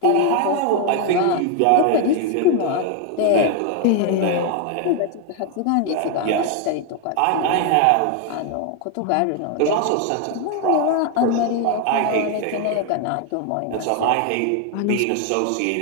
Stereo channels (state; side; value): different; both; correlation 0.01